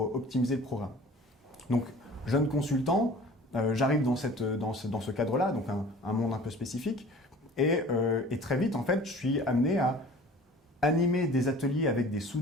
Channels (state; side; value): normal; both; correlation 0.45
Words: optimiser le programme. Donc, jeune consultant, j'arrive dans ce cadre-là, donc un monde un peu spécifique, et très vite, en fait, je suis amené à animer des ateliers avec des